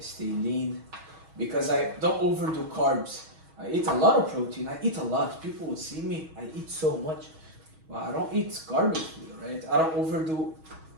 lean because I don't overdo carbs. I eat a lot of protein. I eat a lot. People would see me. I eat so much. But I don't eat garbage food, right? I don't overdo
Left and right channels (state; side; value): late; left; 6.3 ms